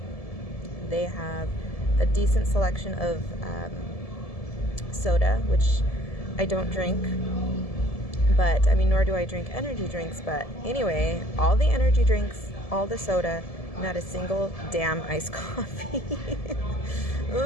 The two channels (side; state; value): right; late; 1.7 ms